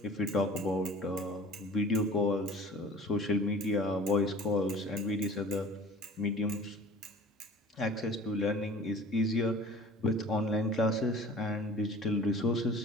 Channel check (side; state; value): both; normal; correlation 0.45